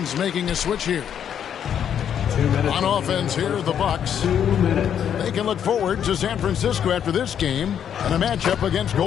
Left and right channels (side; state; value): right; quieter; 8.9 dB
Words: making a switch here. 2 minutes. On offense here, the Bucks. 2 minutes. They can look forward to San Francisco after this game and a matchup against